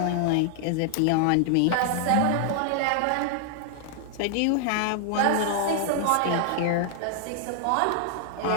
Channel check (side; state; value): both; different; correlation 0.00